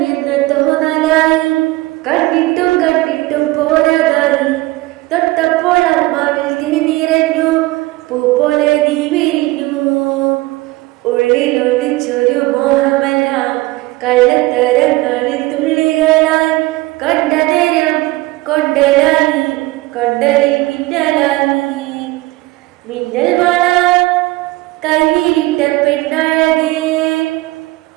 തോന്നലായി, കണ്ടിട്ടും കണ്ടിട്ടും പോരാതായി. തൊട്ടപ്പോൾ അമ്മാവിൽ തിരിനിറഞ്ഞു, പൂ പോലെ നീ വിരിഞ്ഞു. ഉള്ളിലൊളിച്ചൊരു മോഹമെല്ലാം കള്ളത്തരങ്ങളിൽ തുള്ളികളായി. കണ്ട നേരം കൊണ്ടലായി, കൊണ്ടലിൽ മിന്നലായി. മിന്നൽ വള കയ്യിലിട്ട പെണ്ണഴകേ,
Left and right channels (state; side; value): quieter; left; 20.1 dB